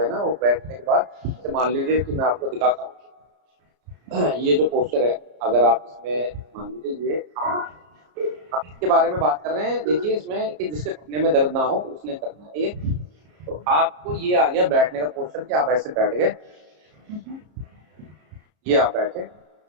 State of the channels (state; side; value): late; left; 34 ms